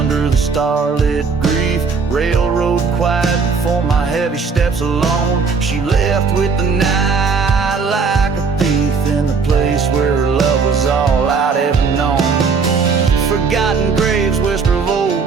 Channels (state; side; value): quieter; left; 5.1 dB